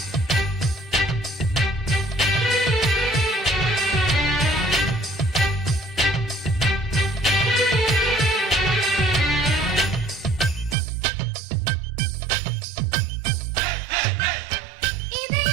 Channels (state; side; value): drops out; left; at 10.8 s